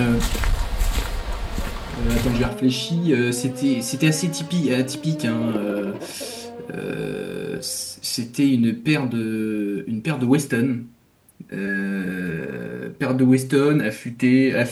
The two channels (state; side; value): identical; both; correlation 1.00